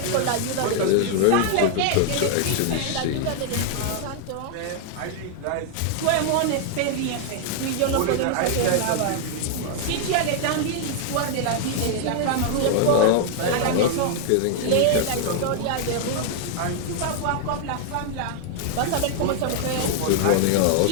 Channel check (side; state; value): both; different; correlation 0.00